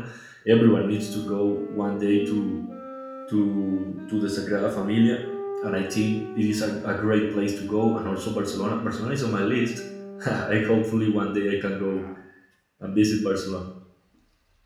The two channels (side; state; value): both; identical; correlation 1.00